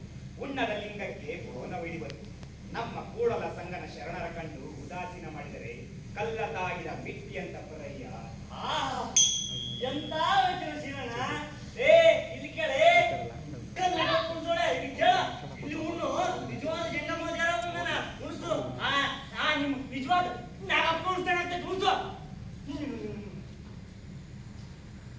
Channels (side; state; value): both; identical; correlation 1.00